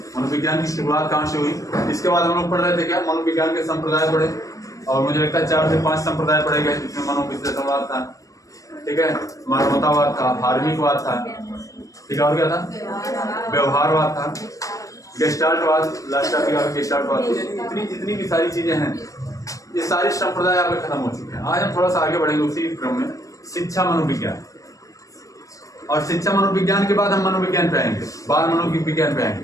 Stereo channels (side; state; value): right; late; 0.16 ms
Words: मनोविज्ञान की शुरुआत कहाँ से हुई, इसके बाद हम लोग पढ़ रहे थे क्या, मनोविज्ञान के संप्रदाय पढ़े, और मुझे लगता है 4 से 5 संप्रदाय पढ़े गए, जिसमें मनोविश्लेषणवाद था, ठीक है, मानवतावाद था, धार्मिकवाद था, ठीक है, और क्या था, व्यवहारवाद था, गेस्टाल्टवाद, लास्ट टॉपिक आपका गेस्टाल्टवाद। इतनी जितनी भी सारी चीजें हैं, ये सारे संप्रदाय आपके खत्म हो चुके हैं। आज हम थोड़ा सा आगे बढ़ेंगे उसी क्रम में, शिक्षा मनोविज्ञान। और शिक्षा मनोविज्ञान के बाद हम मनोविज्ञान पे आएंगे, बाल मनोविज्ञान पे